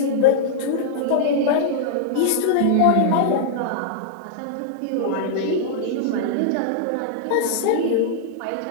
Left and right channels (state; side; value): different; both; correlation -0.01